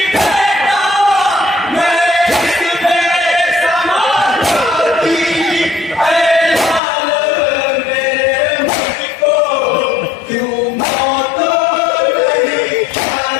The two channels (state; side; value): drops out; right; at 6.8 s